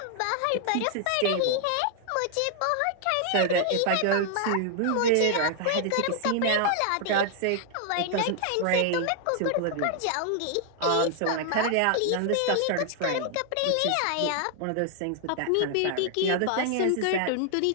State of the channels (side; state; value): both; different; correlation 0.00